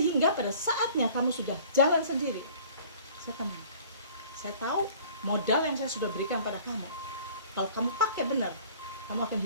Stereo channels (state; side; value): inverted; both; correlation -0.49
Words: pada saatnya kamu sudah jalan sendiri, saya tenang. Saya tahu modal yang saya sudah berikan pada kamu, kalau kamu pakai benar, kamu akan